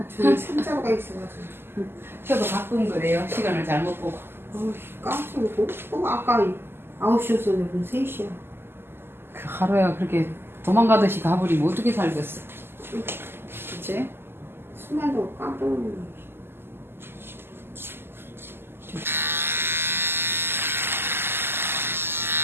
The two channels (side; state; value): left; late; 0.11 ms